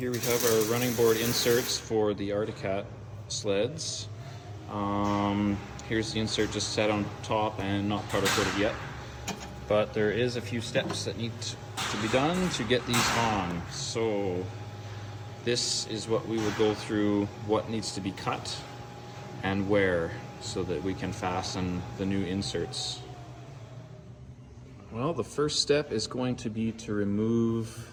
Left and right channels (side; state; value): both; identical; correlation 1.00